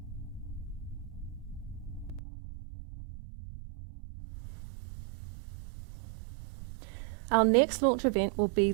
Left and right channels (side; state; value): left; drops out; at 2.2 s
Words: Our next launch event will be